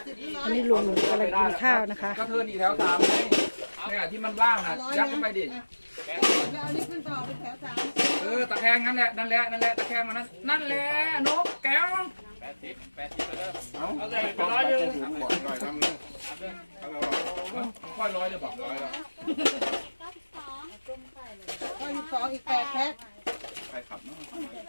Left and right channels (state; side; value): inverted; both; correlation -1.00